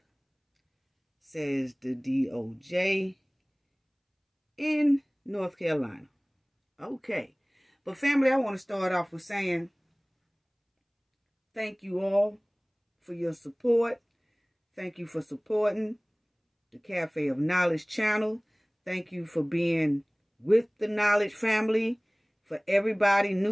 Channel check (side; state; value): both; identical; correlation 1.00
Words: says the DOJ in North Carolina. Okay. But family, I want to start off with saying thank you all for your support. Thank you for supporting the Cafe of Knowledge channel. Thank you for being with the Knowledge family. For everybody,